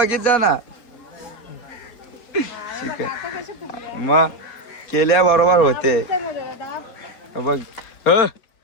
जा ना. शिकल मग केल्या बरोबर होते बघ.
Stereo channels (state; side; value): late; right; 4.1 ms